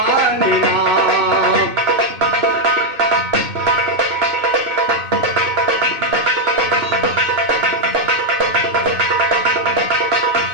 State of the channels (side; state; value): left; late; 2.6 ms